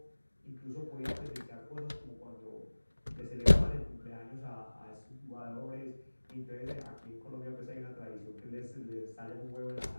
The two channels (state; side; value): inverted; both; correlation -1.00